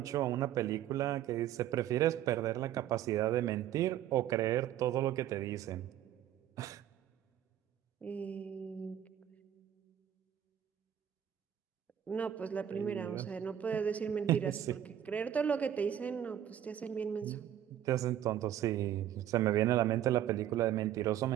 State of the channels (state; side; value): quieter; left; 10.9 dB